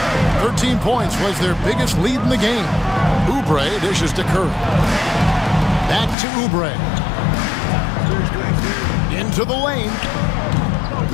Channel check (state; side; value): drops out; right; at 6.2 s